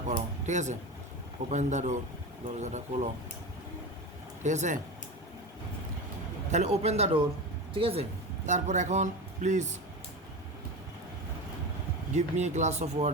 করো। ঠিক আছে? ওপেন দ্য ডোর, দরজাটা খোলো। ঠিক আছে? তাহলে ওপেন দ্য ডোর। ঠিক আছে? তারপর এখন please give me a glass of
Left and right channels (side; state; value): both; normal; correlation 0.25